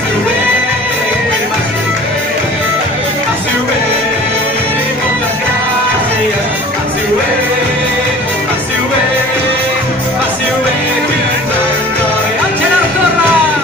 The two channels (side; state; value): both; normal; correlation 0.45